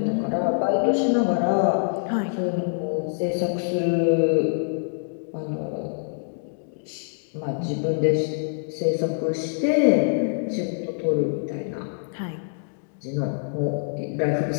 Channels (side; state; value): right; silent; digital silence